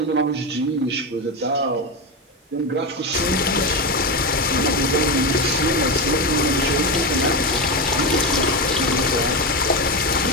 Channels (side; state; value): both; normal; correlation 0.15